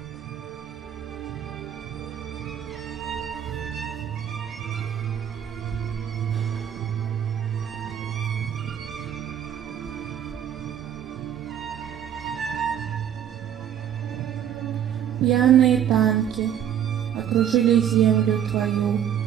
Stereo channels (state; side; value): quieter; left; 9.6 dB